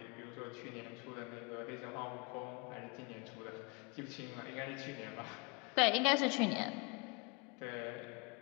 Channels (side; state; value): right; quieter; 30.5 dB